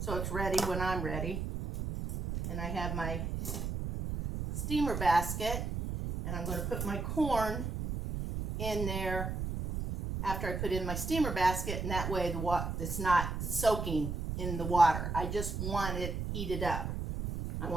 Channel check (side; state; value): right; noise; rumble, 3 dB below the sound